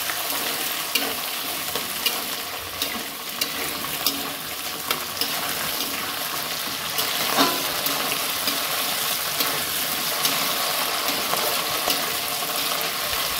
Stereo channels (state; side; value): identical; both; correlation 1.00